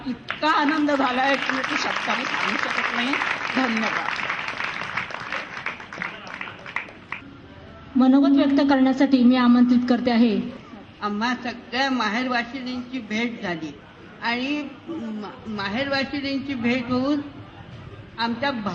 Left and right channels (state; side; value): identical; both; correlation 1.00